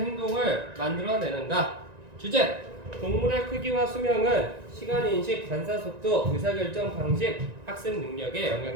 만들어내는가. 주제 동물의 크기와 수명은 시간 인식, 반사 속도, 의사결정 방식, 학습 능력에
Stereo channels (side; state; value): left; late; 1.9 ms